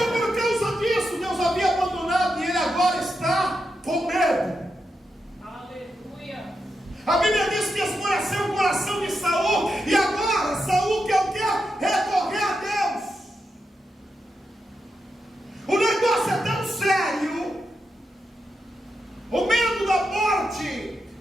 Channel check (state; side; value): normal; both; correlation 0.86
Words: por causa disso, Deus havia abandonado e ele agora está com medo. Aleluia. A Bíblia diz que escureceu o coração de Saul, e agora Saul quer o quê? Recorrer a Deus. O negócio é tão sério, o medo da morte